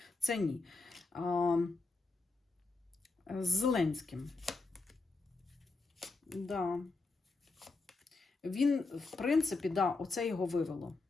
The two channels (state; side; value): quieter; right; 3.7 dB